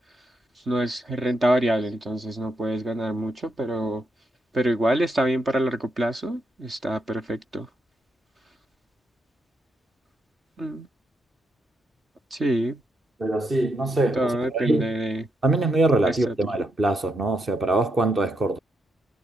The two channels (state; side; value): normal; both; correlation 0.81